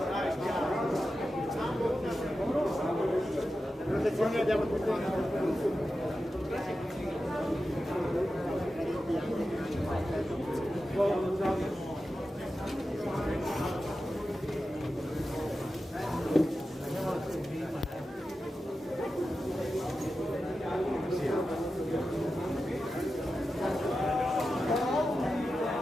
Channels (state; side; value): normal; both; correlation 0.92